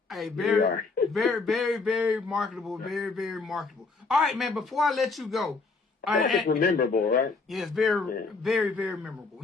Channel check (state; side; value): quieter; right; 4.1 dB